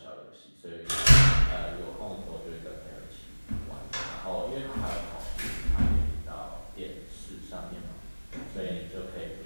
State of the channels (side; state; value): both; inverted; correlation -1.00